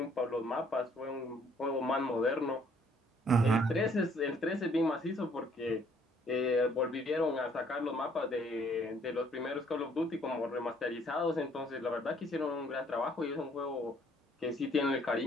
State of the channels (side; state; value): both; normal; correlation 0.63